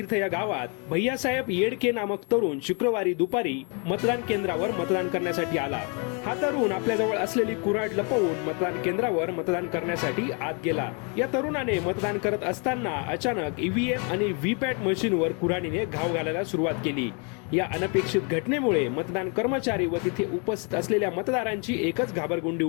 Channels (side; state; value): right; quieter; 35.8 dB